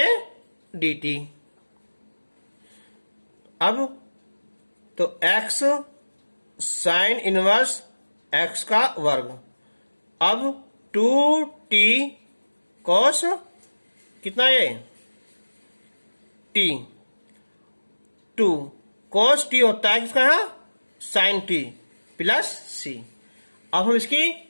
डी टी। अब तो एक्स साइन इनवर्स एक्स का वर्ग, अब 2t कोस कितना ये टी, 2 कोस टी होता है किसका, साइन टी प्लस सी। अब हम इसकी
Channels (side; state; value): both; inverted; correlation -1.00